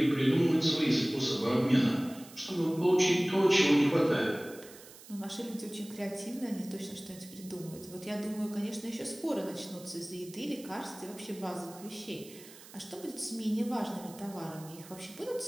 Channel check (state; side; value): noise; right; hiss, 19 dB below the sound